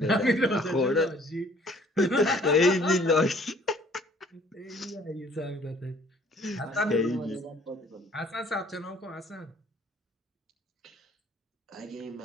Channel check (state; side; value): normal; both; correlation 0.56